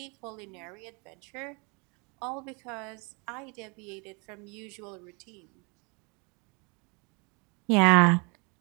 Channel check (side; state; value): left; quieter; 31.5 dB